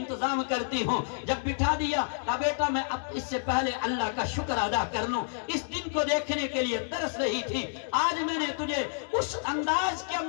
کرتی ہوں. جب بٹھا دیا کہا بیٹا میں اب اس سے پہلے اللہ کا شکر ادا کر لوں. اس دن کو دیکھنے کے لیے ترس رہی تھی. آج میں نے تجھے اس انداز کے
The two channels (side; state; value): right; silent; digital silence